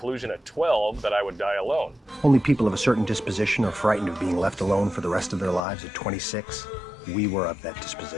at 12 that I would die alone. Only people of a certain disposition are frightened of being left alone for the rest of their lives. At 26, we were of that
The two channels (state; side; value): drops out; right; at 5.6 s